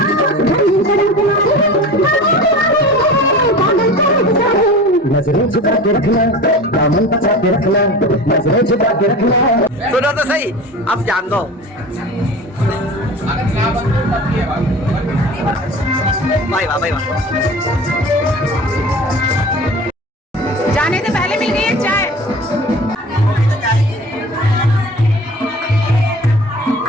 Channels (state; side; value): normal; both; correlation 0.36